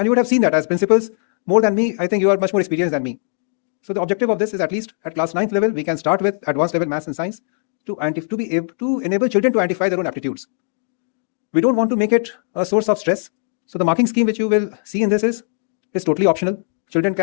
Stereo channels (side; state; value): right; silent; 63 dB below the other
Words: you would have seen that as principals more than me. I think you are much more experienced than me. So the objective of this is, at least at class 9th level, we can start with advanced level maths and science to be able to enable children to identify their own aptitudes. We don't want to make it a source of stress. So the marking scheme which you will see in this is totally optional. Children